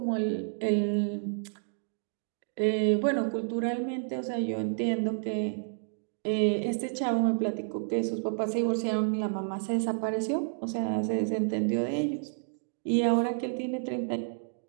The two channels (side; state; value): left; silent; digital silence